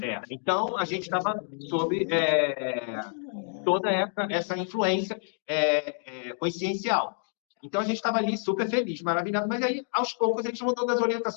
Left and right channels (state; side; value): silent; right; digital silence